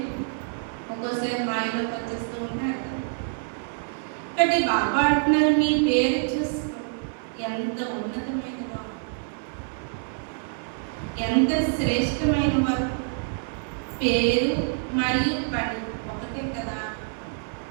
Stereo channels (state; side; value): silent; left; 61 dB below the other